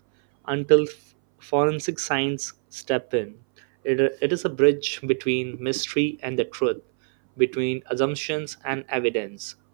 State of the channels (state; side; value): silent; left; 61 dB below the other